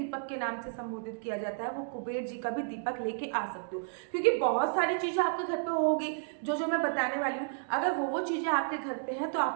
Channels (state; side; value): silent; left; digital silence